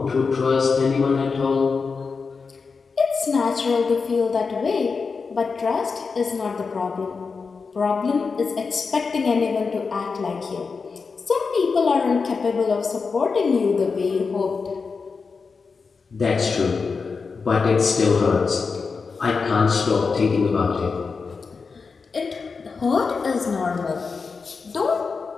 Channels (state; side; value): quieter; right; 4.9 dB